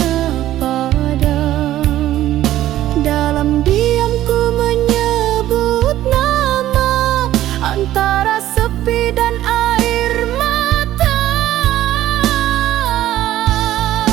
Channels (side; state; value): left; quieter; 13.6 dB